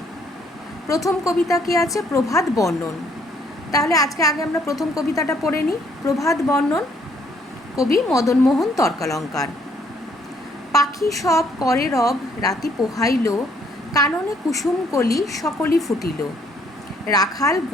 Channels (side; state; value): both; normal; correlation 0.66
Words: প্রথম কবিতা কি আছে? প্রভাত বর্ণন। তাহলে আজকে আগে আমরা প্রথম কবিতাটা পড়ে নিই। প্রভাত বর্ণন, কবি মদনমোহন তর্কালঙ্কার। পাখি সব করে রব, রাতি পোহাইল, কাননে কুসুম কলি সকলি ফুটিল। রাখাল